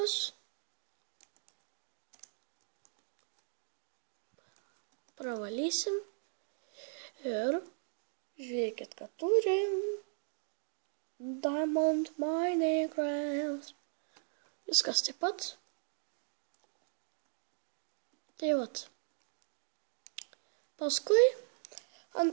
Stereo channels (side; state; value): left; silent; digital silence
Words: Pravalysim. Ir žiūrėkit, kad turim Diamond Minecraft. Viskas taip pat. Tai vat. Paskui